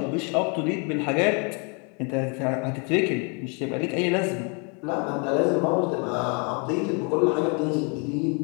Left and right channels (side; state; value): right; quieter; 35.4 dB